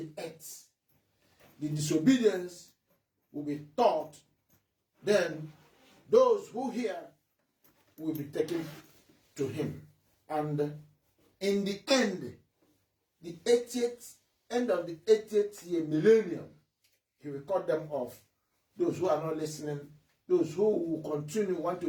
earth. The disobedience will be taught. Then those who hear will be taken to him. And in the end, the 80th, end of the 80th year millennium, he will cut them off. Those who are not listening, those who will continue want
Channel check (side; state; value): both; identical; correlation 1.00